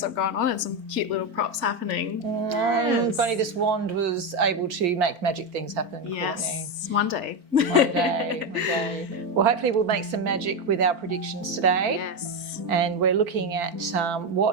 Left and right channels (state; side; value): late; left; 4.4 ms